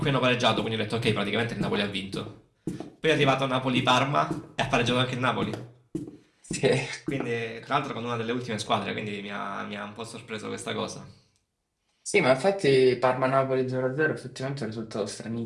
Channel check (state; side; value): identical; both; correlation 1.00